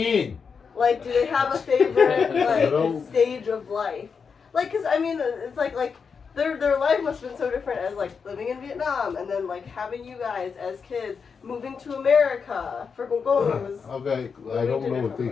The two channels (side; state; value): right; quieter; 5.8 dB